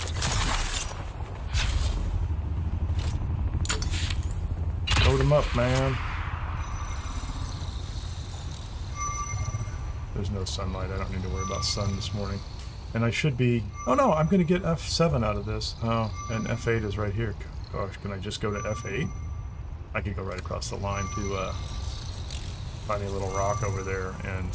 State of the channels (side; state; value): both; identical; correlation 1.00